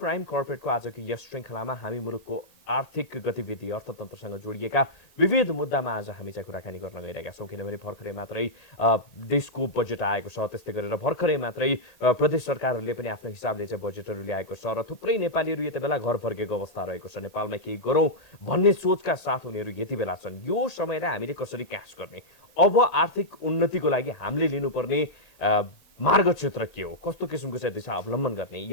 कर्पोरेटको आजको यस श्रृङ्खलामा हामी मुलुकको आर्थिक गतिविधि अर्थतन्त्रसँग जोडिएका विविध मुद्दामा आज हामी चाहिँ कुराकानी गर्न गइरहेका छौँ। किनभने भर्खरै मात्रै देशको बजेट आएको छ, त्यस्तै गरेर भर्खरै मात्रै प्रदेश सरकारहरूले पनि आफ्नो हिसाबले चाहिँ बजेटहरू ल्याएको छ र थुप्रै नेपालीहरू यति बेला घर फर्केको अवस्था रहेको छ। नेपालमा केही गरौँ भन्ने सोचका साथ उनीहरू यति बेला छन्। यो समयलाई हामीले कसरी क्याच गर्ने, अब आर्थिक उन्नतिको लागि हामीले लिनुपर्ने मार्ग क्षेत्र के हो, कस्तो किसिमको चाहिँ दिशा अवलम्बन गर्ने,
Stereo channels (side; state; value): right; late; 1.8 ms